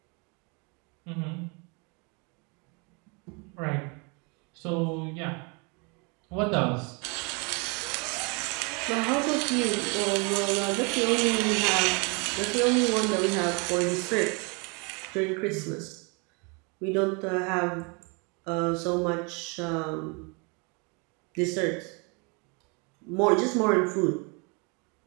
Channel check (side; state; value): left; quieter; 32.0 dB